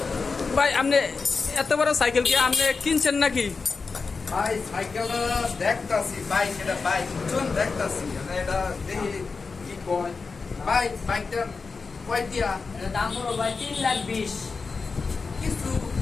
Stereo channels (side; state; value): right; quieter; 4.6 dB